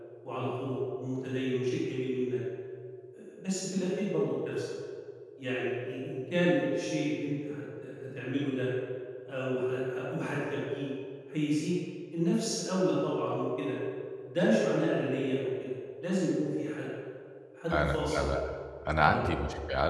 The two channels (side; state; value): both; identical; correlation 1.00